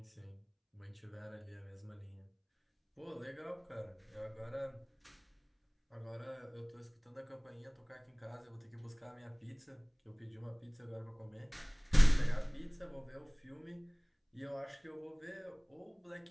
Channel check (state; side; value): identical; both; correlation 1.00